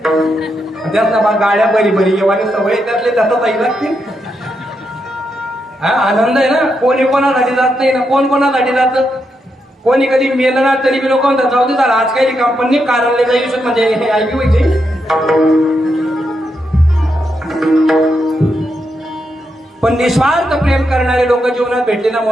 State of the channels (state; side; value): normal; both; correlation 0.83